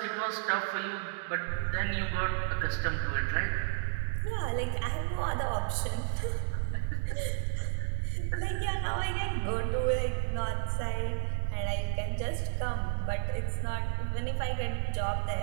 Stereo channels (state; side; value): silent; left; digital silence